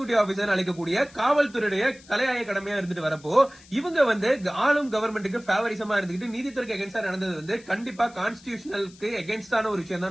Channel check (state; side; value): noise; left; hiss, 24 dB below the sound